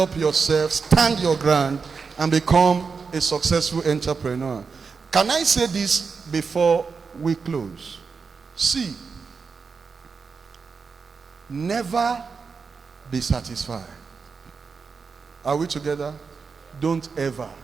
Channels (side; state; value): left; quieter; 5.2 dB